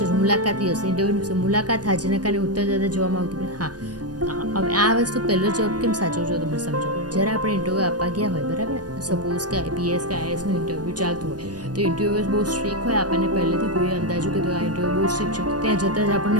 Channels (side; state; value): left; late; 0.69 ms